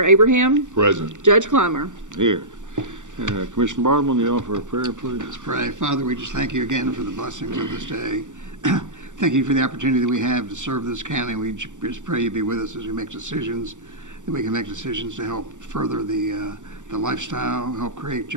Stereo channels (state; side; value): late; left; 0.86 ms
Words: Abraham. Present. Judge Clymer. Here. Commissioner Bartleman, you offer a prayer, please. Let's pray. Father, we just thank you again for the blessings of this day. Thank you for the opportunity that we have to serve this county. We just pray you be with us as we make decisions, that we can make decisions to help further the lifestyle, help create